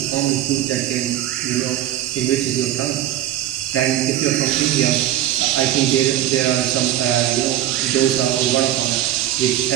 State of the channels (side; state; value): left; quieter; 12.7 dB